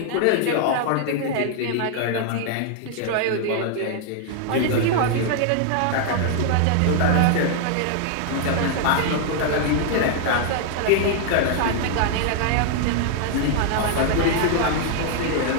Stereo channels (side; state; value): both; different; correlation 0.00